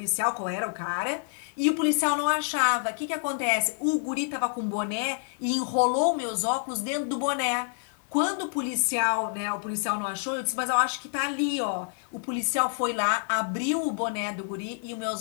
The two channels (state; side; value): silent; right; 55 dB below the other